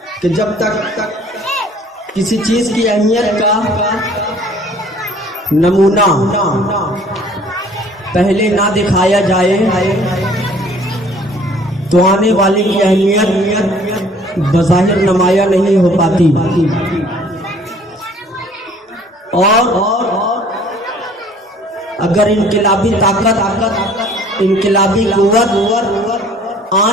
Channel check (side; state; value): both; normal; correlation 0.54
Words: کہ جب تک کسی چیز کی اہمیت کا نمونہ پہلے نہ دکھایا جائے تو آنے والی کی اہمیت بظاہر نمایاں نہیں ہو پاتی. اور اگر انقلابی طاقت انقلابی قوت